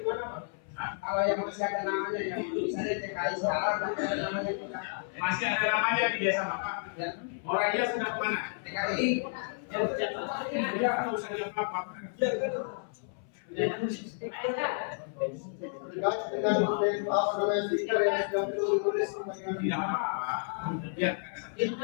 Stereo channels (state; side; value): silent; right; 56 dB below the other